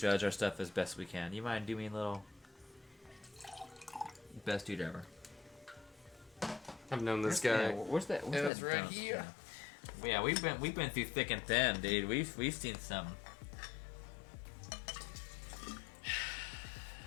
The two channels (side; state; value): right; drops out; at 8.5 s